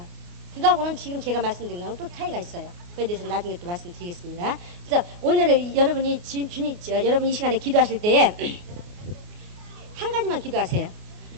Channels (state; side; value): late; left; 28 ms